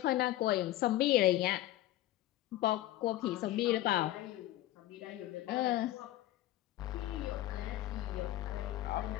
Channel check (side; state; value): right; quieter; 15.2 dB